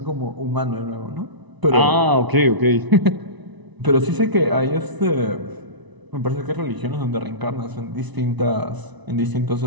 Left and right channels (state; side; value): late; left; 1.0 ms